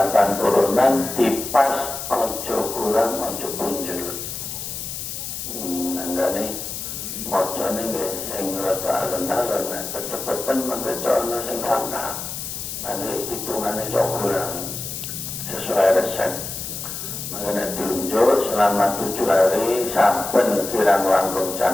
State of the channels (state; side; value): noise; left; hiss, 7 dB below the sound